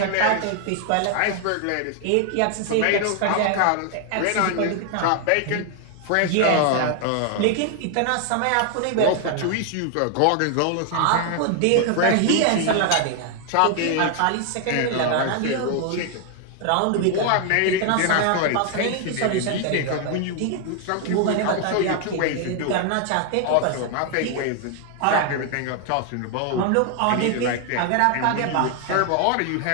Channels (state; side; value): different; both; correlation 0.00